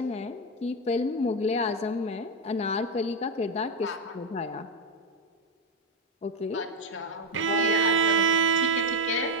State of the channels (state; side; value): normal; both; correlation 0.06